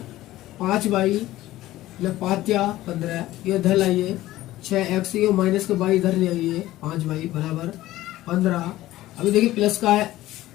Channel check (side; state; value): right; quieter; 15.8 dB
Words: 5y + 5 15, ये इधर लाइए, 6x, ये माइनस के y इधर ले आइए, 5y बराबर 15। अभी देखिए प्लस का है,